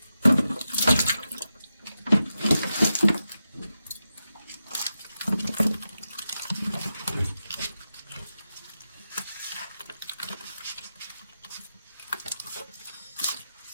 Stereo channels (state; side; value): inverted; both; correlation -0.90